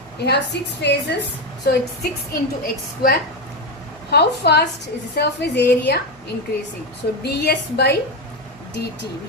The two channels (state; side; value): noise; left; hum, 29 dB below the sound